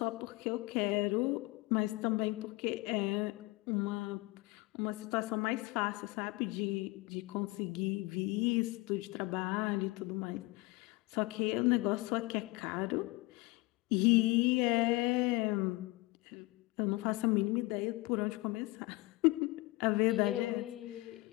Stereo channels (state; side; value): quieter; right; 22.5 dB